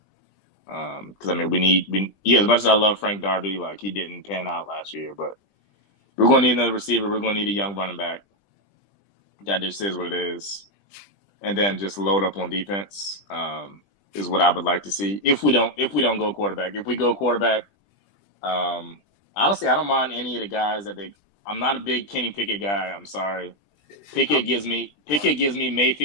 Because I mean, as much as I love Frank Darby, like he didn't pan out last year, but we're going to need another receiver. We're going to need a young running back. That just is what it is. And then just load up on defense is what I would like to see. If we don't go quarterback, if we go quarterback, honestly, I don't mind any of the guys I'm not a big Kenny Pickett guy. I'm sorry. Pickett gives me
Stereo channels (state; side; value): late; right; 20 ms